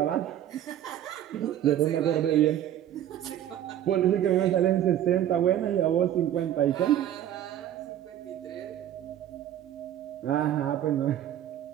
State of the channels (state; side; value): quieter; left; 11.4 dB